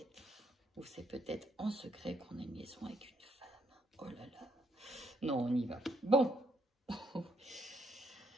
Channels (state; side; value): normal; both; correlation 0.74